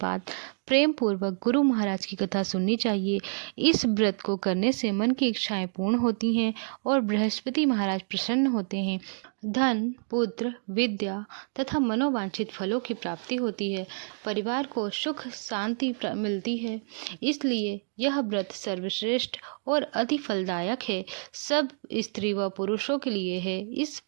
प्रेम पूर्वक गुरु महाराज की कथा सुननी चाहिए। इस व्रत को करने से मन की इच्छाएं पूर्ण होती हैं और बृहस्पति महाराज प्रसन्न होते हैं। धन, पुत्र, विद्या तथा मनोवांछित फलों की प्राप्ति होती है। परिवार को सुख शांति मिलती है। इसलिए यह व्रत सर्वश्रेष्ठ और अति फलदायक है। सब स्त्री व पुरुषों के लिए है। इस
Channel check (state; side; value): silent; left; 59 dB below the other